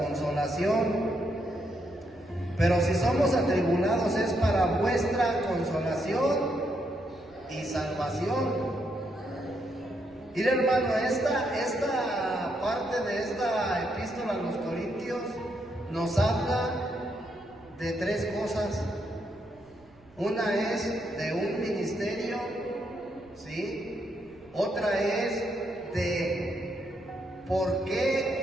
Pero si somos atribulados es para vuestra consolación y salvación. Mira, hermano, esta parte de esta epístola a los Corintios nos habla de tres cosas. Una es de un ministerio, ¿sí? Otra es de por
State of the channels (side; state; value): right; noise; rumble, 28 dB below the sound